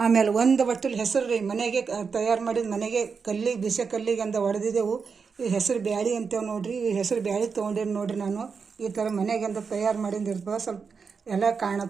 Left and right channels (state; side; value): quieter; left; 5.5 dB